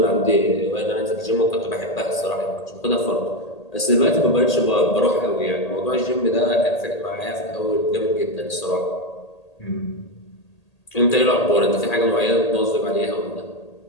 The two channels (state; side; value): late; right; 1.8 ms